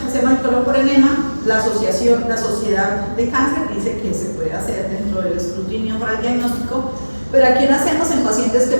el colon por enema. La sociedad de cáncer dice que se puede hacer dentro del escrutinio para el diagnóstico, pero aquí lo hacemos en pacientes que,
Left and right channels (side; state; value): both; inverted; correlation -1.00